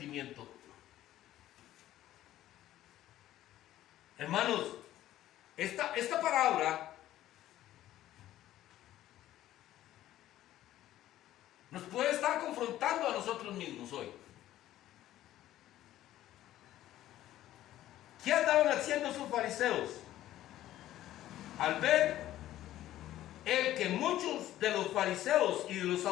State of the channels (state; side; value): quieter; right; 13.7 dB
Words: Hermanos, esta palabra confrontando a nosotros mismos hoy. ¿Qué andaban haciendo esos fariseos? Al ver el que muchos de los fariseos y de los